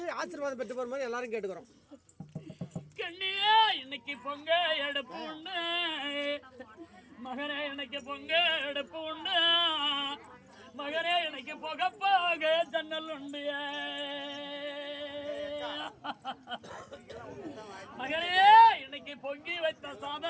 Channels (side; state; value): both; identical; correlation 1.00